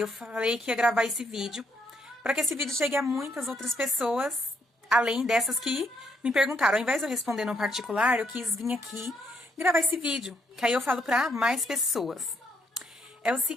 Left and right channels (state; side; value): normal; both; correlation 0.73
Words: eu falei que ia gravar esse vídeo para que esse vídeo chegue a muitas outras pessoas, além dessas que me perguntaram. Ao invés de eu responder no particular, eu quis vir aqui gravar esse vídeo, que aí eu falo para mais pessoas. É o